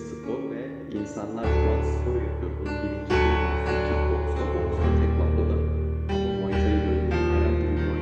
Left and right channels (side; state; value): both; identical; correlation 1.00